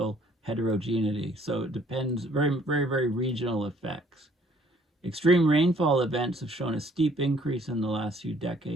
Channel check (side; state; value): both; normal; correlation 0.60